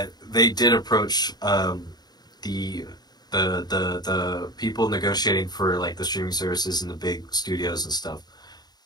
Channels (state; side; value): late; right; 0.20 ms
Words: they did approach the the people negotiating for like the streaming services and the big studios and stuff